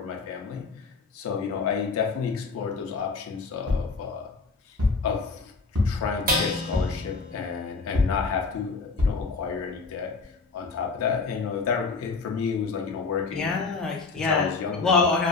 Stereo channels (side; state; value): right; quieter; 4.3 dB